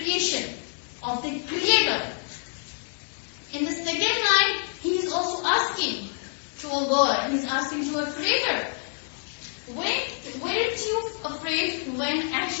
of the creator. In the second line, he is also asking to a God. He is asking to a creator. Weren't you afraid when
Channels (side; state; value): right; silent; 60 dB below the other